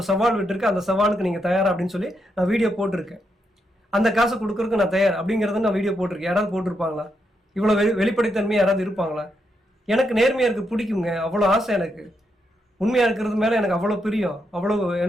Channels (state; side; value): normal; both; correlation 0.81